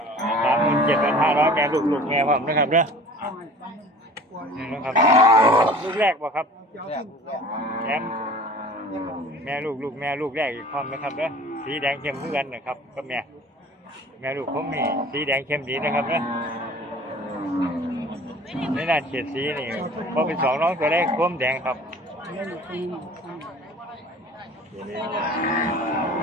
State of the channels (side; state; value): both; normal; correlation 0.44